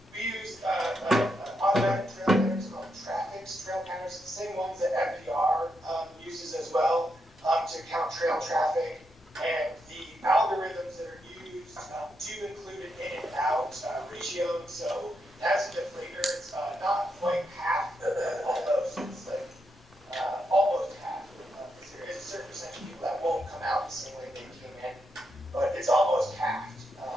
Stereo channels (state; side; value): normal; both; correlation 0.82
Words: we use automatic trail counters called traffics trail counters, the same ones that FDR uses as well to count trail traffic. And the algorithms that are used do include an in and out ratio. So as a deflator, it's not quite half, almost. It's like almost half. There is a certain percentage of people that won't come out the same way they came in, but it's almost half to